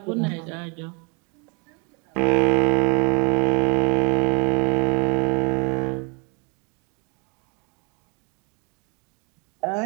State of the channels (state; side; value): quieter; left; 33.2 dB